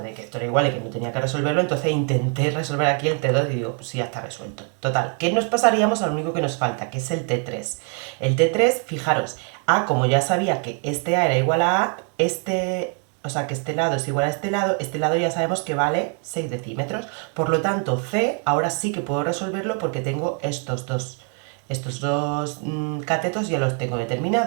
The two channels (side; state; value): left; quieter; 39.9 dB